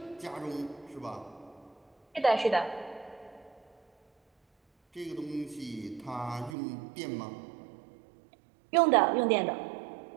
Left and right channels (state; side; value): drops out; left; at 6.6 s